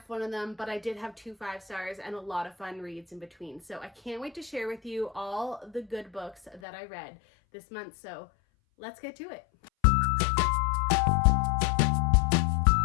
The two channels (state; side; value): drops out; right; at 6.6 s